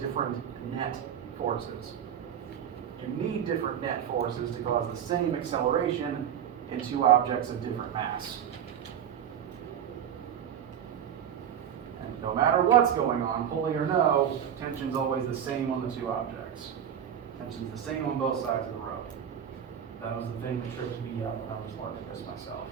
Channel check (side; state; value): left; quieter; 9.1 dB